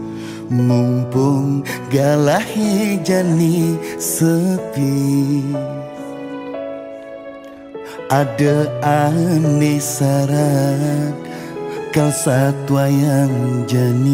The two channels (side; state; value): both; identical; correlation 1.00